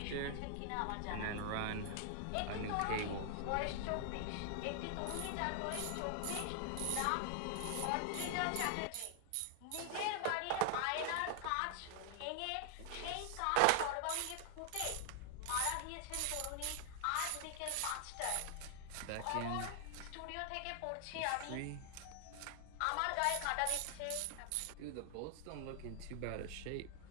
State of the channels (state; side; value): different; both; correlation 0.00